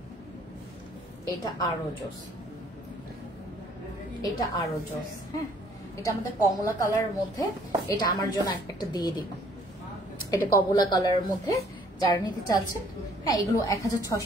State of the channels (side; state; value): both; normal; correlation 0.60